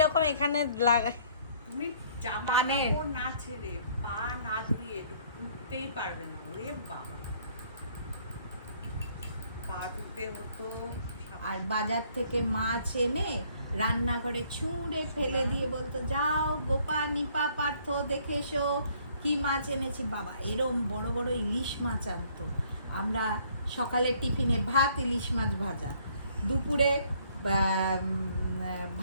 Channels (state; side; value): inverted; both; correlation -0.62